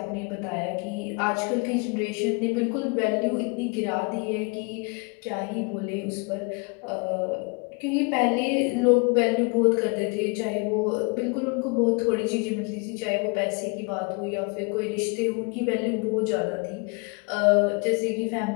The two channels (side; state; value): right; quieter; 33.0 dB